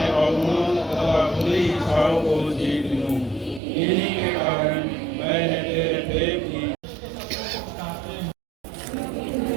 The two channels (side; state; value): left; drops out; at 3.6 s